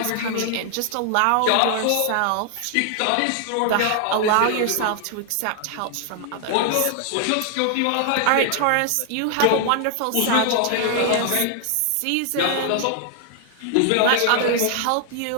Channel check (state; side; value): different; both; correlation 0.00